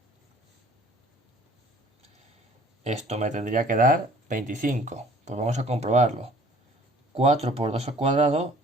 Esto me tendría que dar 25. Pues vamos a comprobarlo. 4 por 2 al cuadrado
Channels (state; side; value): normal; both; correlation 0.53